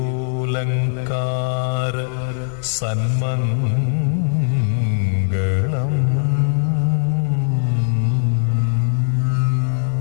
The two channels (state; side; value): silent; right; digital silence